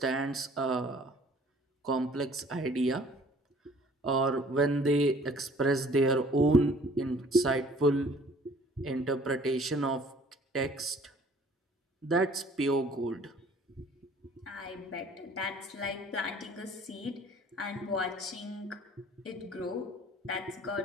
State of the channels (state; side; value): normal; both; correlation 0.54